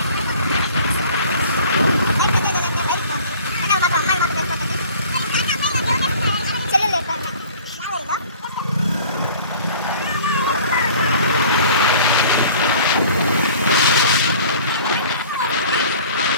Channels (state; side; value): inverted; both; correlation -0.47